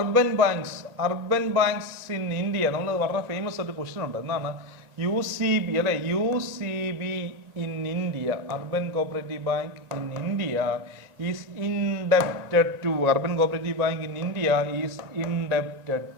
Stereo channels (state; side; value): late; left; 1.9 ms